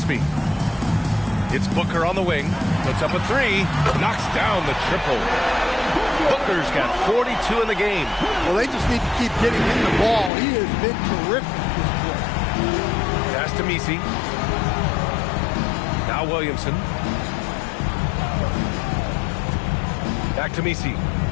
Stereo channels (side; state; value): right; drops out; at 10.3 s